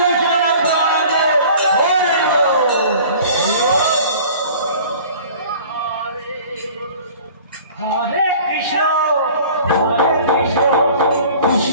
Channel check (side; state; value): both; inverted; correlation -0.46